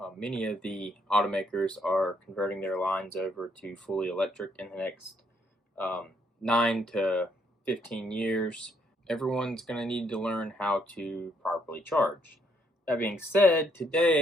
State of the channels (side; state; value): both; normal; correlation 0.71